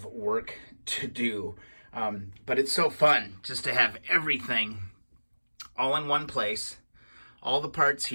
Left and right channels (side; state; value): both; inverted; correlation -1.00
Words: work to do, but it's so fun just to have everything all in one place, all the parts